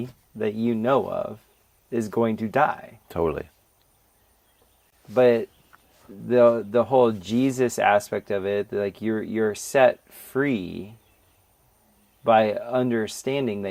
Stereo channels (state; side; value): identical; both; correlation 1.00